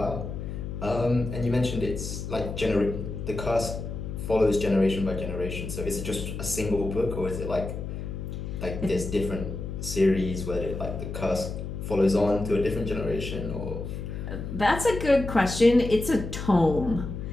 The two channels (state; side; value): noise; left; hum, 6 dB below the sound